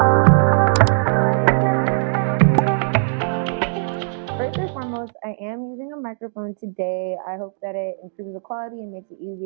First and foremost, I am using a microphone today. I hope that it improves the quality and makes it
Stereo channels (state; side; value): silent; left; 66 dB below the other